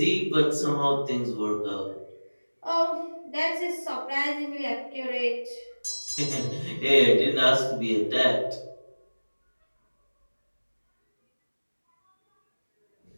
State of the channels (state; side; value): inverted; both; correlation -1.00